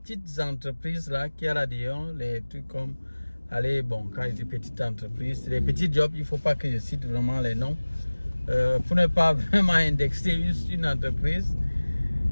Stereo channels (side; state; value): both; inverted; correlation -1.00